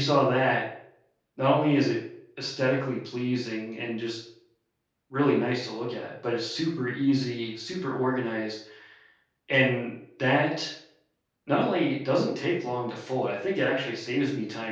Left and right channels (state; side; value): identical; both; correlation 1.00